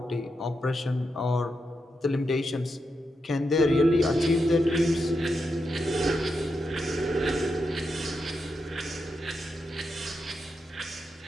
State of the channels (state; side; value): normal; both; correlation 0.85